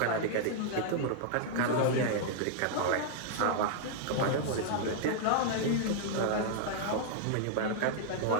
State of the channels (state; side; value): different; both; correlation -0.01